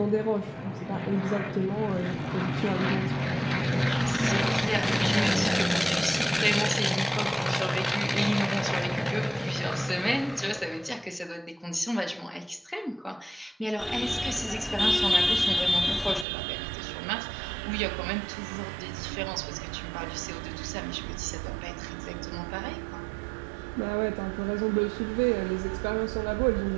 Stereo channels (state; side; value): drops out; left; at 16.2 s